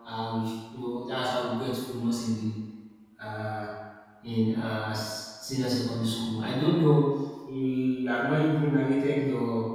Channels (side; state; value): both; identical; correlation 1.00